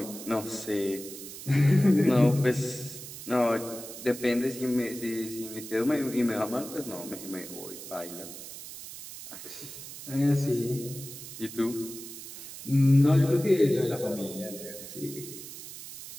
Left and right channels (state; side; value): noise; right; hiss, 12 dB below the sound